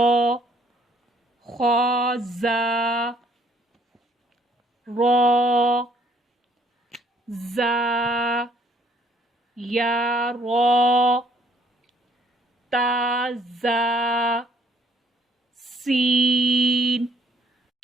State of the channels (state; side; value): normal; both; correlation 0.64